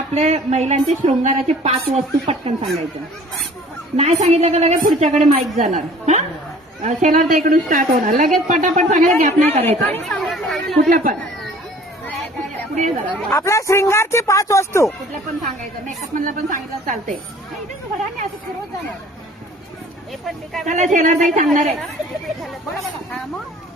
महिलांचे शृंगाराचे 5 वस्तू पटकन सांगायच्या. नाही सांगितलं का लगेच पुढच्याकडे माईक जाणार. हा शेलार ताईकडून स्टार्ट होणार. लगेच पटापट सांगायला गॅप नाही करायचा कुठलं पण. पुढे आपल्या श्रृंगारची 5 वस्तू कुठलं पण सांगायचं. मेकअप मधलं पण सांगितलं चालते. चला शेलार ताई सांगणार आहे.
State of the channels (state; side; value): normal; both; correlation 0.50